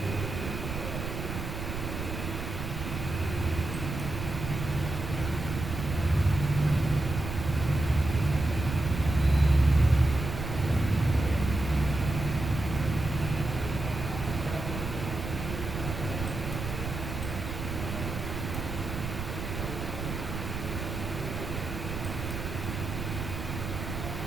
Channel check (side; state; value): right; noise; rumble, 5 dB below the sound